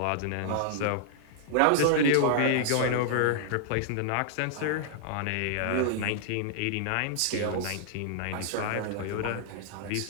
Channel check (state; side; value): different; both; correlation -0.01